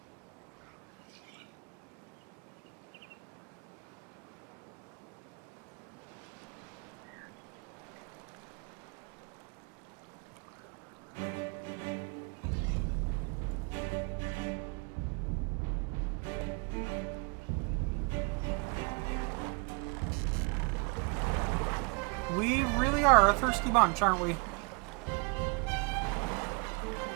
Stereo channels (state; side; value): quieter; left; 32.9 dB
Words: We really are a thirsty bunch, aren't we?